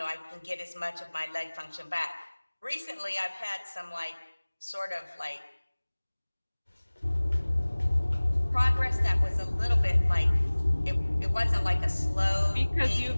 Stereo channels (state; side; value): inverted; both; correlation -1.00